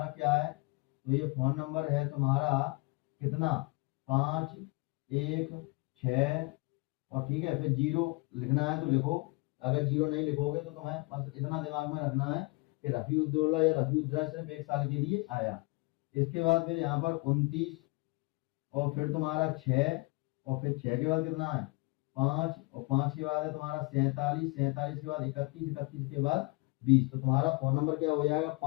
क्या है, तो ये फोन नंबर है तुम्हारा कितना, 516, और ठीक है, फिर 0 लिखना है तो लिखो, अगर 0 नहीं लिखोगे तो तुम्हें बस इतना दिमाग में रखना है कि रफी उद्दौला या रफी उद्दौला सिर्फ 1 साल के लिए आया। इसके बाद फिर यहाँ पर 29, और फिर तुम्हारा 6, और फिर 6 के बाद कितना है 5, और 5 के बाद है तुम्हारा 47, 47 के बाद 31, 31 के बाद 20। तो तुम्हारा फोन नंबर क्या हो जाएगा,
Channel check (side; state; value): right; quieter; 26.5 dB